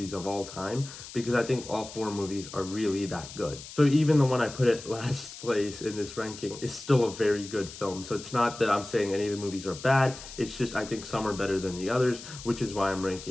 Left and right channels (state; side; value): noise; left; hiss, 14 dB below the sound